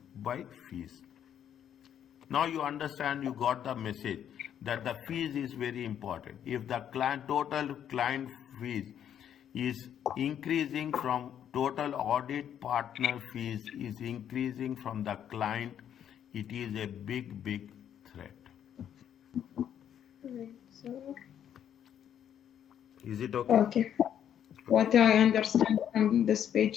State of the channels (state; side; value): quieter; right; 9.6 dB